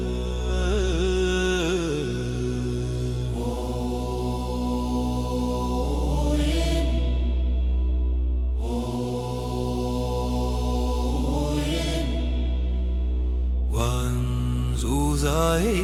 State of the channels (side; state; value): both; identical; correlation 1.00